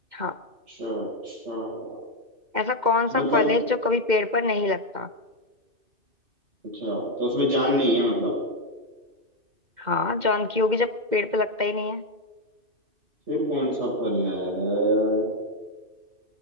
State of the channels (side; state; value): left; late; 2.1 ms